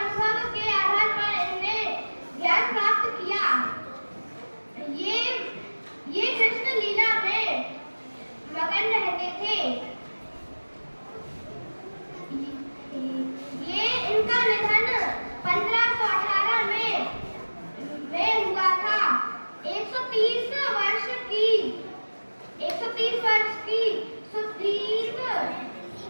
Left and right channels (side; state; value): both; inverted; correlation -1.00